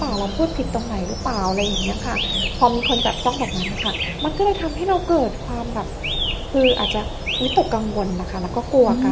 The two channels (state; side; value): identical; both; correlation 1.00